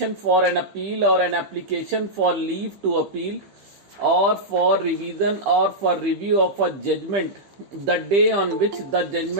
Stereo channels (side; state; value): left; late; 15 ms